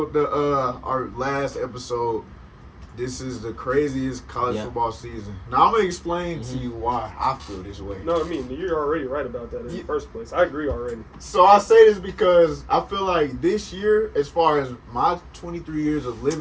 our last episode, "This is the craziest college football season." Now I'm gonna explain to you why I feel this way. No, I mean you're already right about that in the first place. I agree already. So I say this because I feel like this year, as far as my 23 years of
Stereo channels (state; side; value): identical; both; correlation 1.00